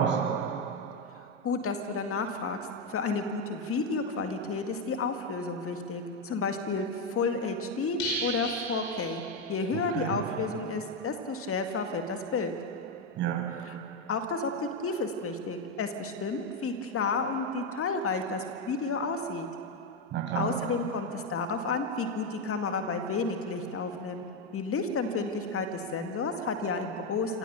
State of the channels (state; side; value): normal; both; correlation 0.07